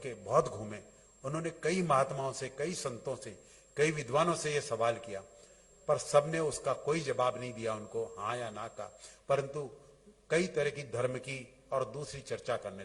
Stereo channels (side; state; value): both; identical; correlation 1.00